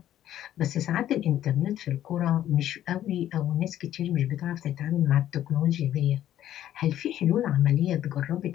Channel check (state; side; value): quieter; right; 12.0 dB